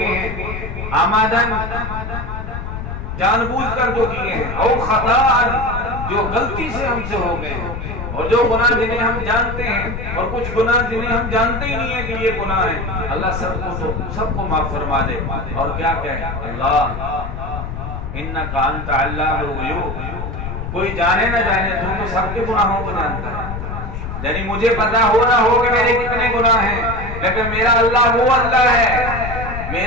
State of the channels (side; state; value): left; noise; rumble, 6 dB below the sound